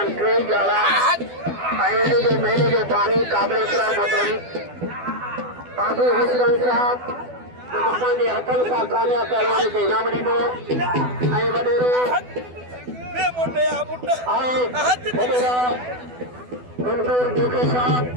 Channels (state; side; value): late; left; 12 ms